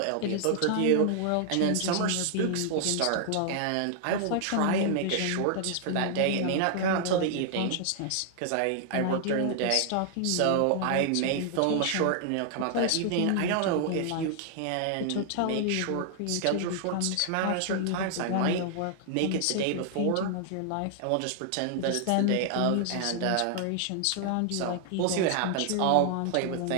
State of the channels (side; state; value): both; different; correlation -0.01